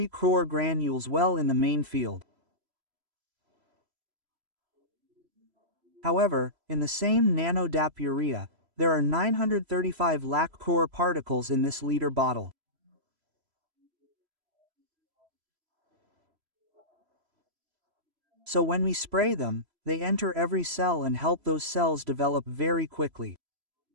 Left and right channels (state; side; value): late; left; 3.0 ms